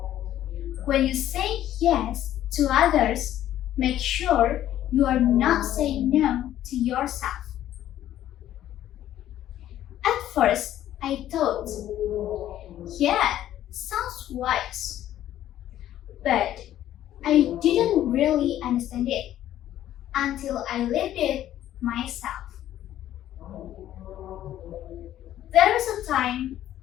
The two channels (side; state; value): right; quieter; 12.4 dB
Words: when you say yes to others, make sure you are not saying no to yourself. At first, I thought, yeah, sounds wise. But I didn't really understand it until I lived it myself. There was a time